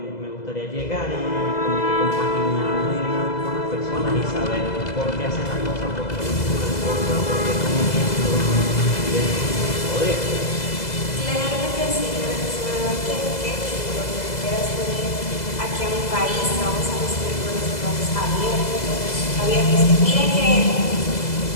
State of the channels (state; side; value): late; right; 2.0 ms